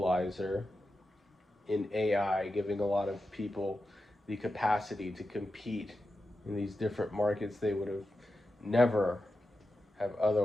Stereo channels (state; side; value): normal; both; correlation 0.90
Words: in AI giving a lot of people the capacity to compete in these different markets they would have never have